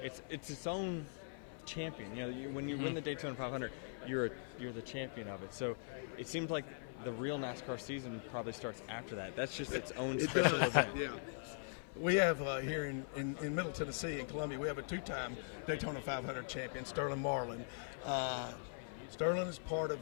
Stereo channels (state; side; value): silent; right; 50 dB below the other